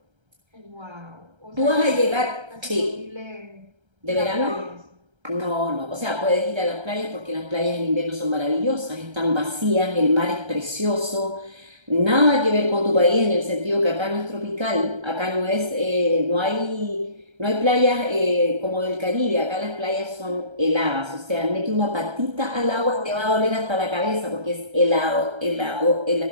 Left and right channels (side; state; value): left; late; 1.3 ms